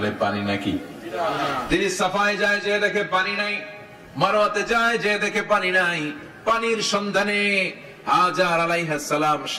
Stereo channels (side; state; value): both; identical; correlation 1.00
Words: পানি নাকি। তিনি সাফায় যায়, যে দেখে পানি নাই। মারওয়াতে যায়, যে দেখে পানি নাই। পানির সন্ধানে হাজার আলাইহিস সালাম